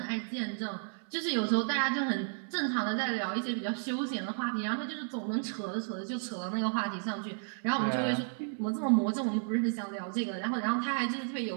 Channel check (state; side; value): silent; left; 56 dB below the other